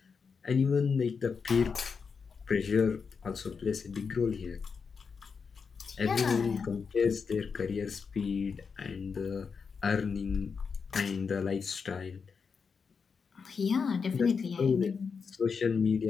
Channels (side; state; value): right; quieter; 5.6 dB